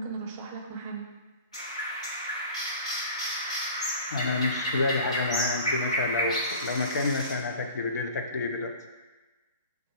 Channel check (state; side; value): inverted; both; correlation -0.41